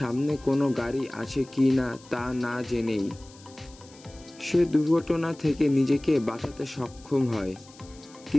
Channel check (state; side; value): noise; left; hiss, 23 dB below the sound